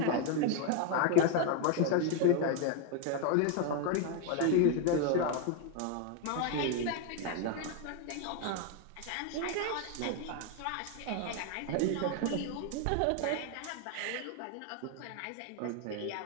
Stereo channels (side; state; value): both; different; correlation 0.01